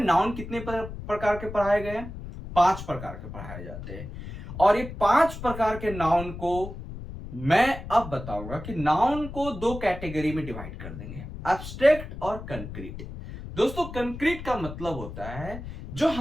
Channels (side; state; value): left; noise; rumble, 10 dB below the sound